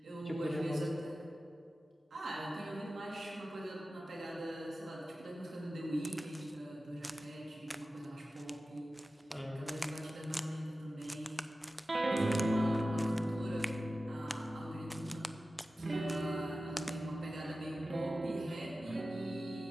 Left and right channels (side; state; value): both; normal; correlation 0.95